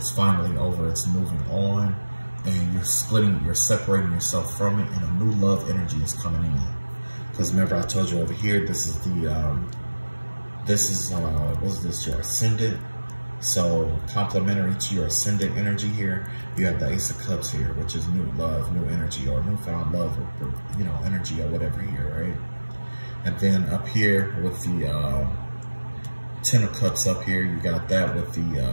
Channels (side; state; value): both; inverted; correlation -1.00